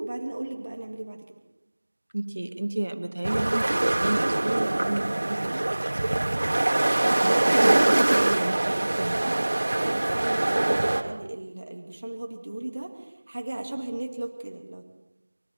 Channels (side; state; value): both; inverted; correlation -1.00